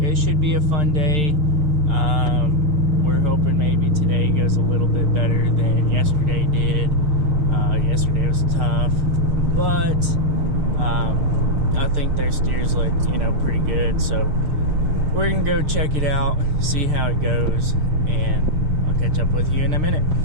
it should be a fun day. We're hoping maybe today goes a little bit better than yesterday did. Yesterday was tough, but I think their steers look, pretty good. So we're gonna go check it out, see how it goes, and I'll catch up with you in a minute.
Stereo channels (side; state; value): left; late; 6.6 ms